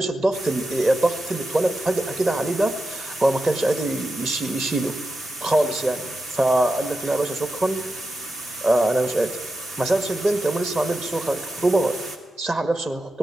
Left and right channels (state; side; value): normal; both; correlation 0.90